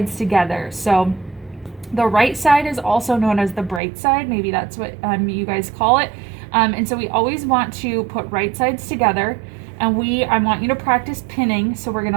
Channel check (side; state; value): left; drops out; at 3.8 s